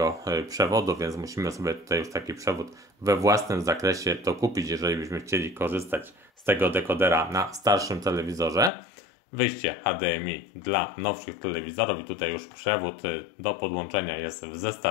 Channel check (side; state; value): right; drops out; at 8.7 s